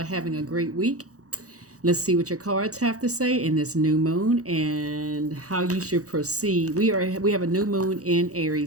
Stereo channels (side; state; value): left; late; 0.66 ms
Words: having a great week. Let's see what your cards have to say in this new moon and how you should proceed. We have a new moon in